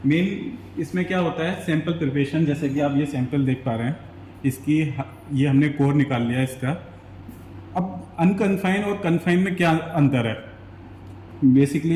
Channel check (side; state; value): both; identical; correlation 1.00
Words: मेन इसमें क्या होता है, सैंपल प्रिपरेशन। जैसे कि आप ये सैंपल देख पा रहे हैं, इसकी ये हमने कोर निकाल लिया इसका। अब अनकन्फाइन और कन्फाइन में क्या अंतर है,